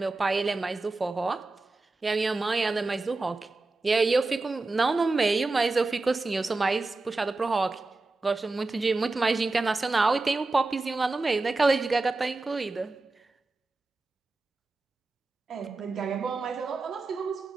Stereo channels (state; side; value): quieter; left; 3.4 dB